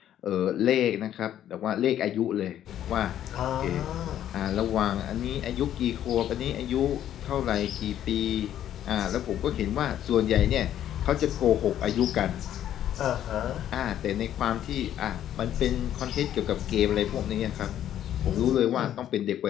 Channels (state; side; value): quieter; right; 11.1 dB